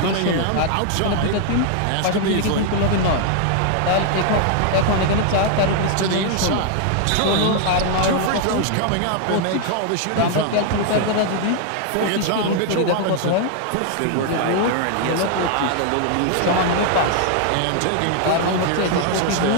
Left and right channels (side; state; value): both; different; correlation 0.00